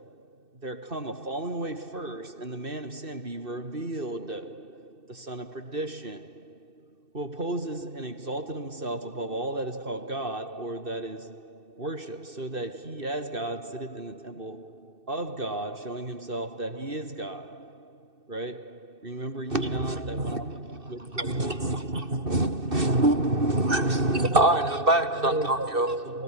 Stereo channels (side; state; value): left; late; 2.6 ms